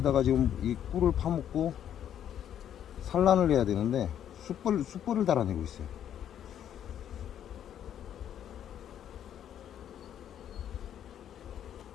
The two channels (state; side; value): quieter; right; 10.0 dB